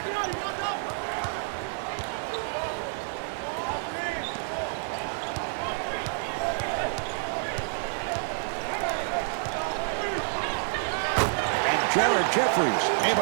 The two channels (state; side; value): silent; left; 59 dB below the other